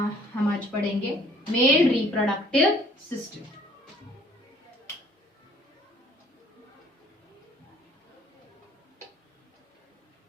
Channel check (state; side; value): normal; both; correlation 0.57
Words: आज पढ़ेंगे मेल रिप्रोडक्टिव सिस्टम।